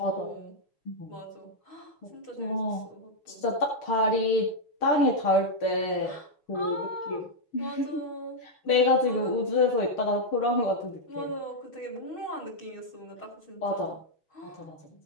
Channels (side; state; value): right; late; 6.6 ms